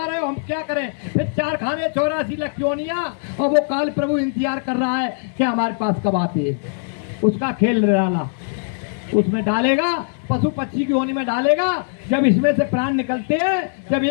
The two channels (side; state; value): right; silent; digital silence